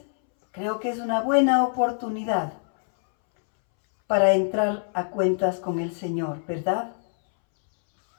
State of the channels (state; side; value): silent; right; 62 dB below the other